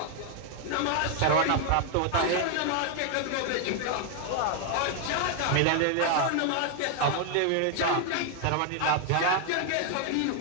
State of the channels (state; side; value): different; both; correlation 0.00